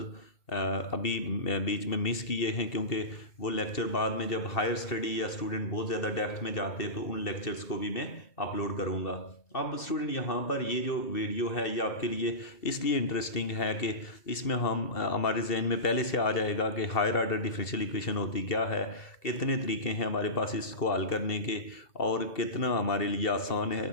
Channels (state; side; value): late; right; 2.7 ms